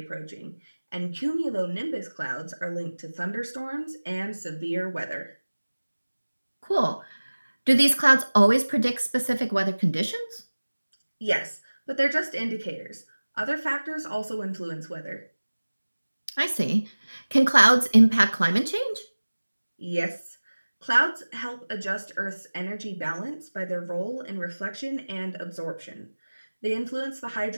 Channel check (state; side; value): inverted; both; correlation -1.00